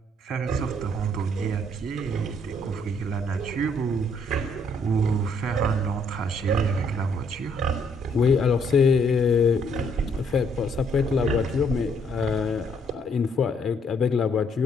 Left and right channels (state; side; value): normal; both; correlation 0.68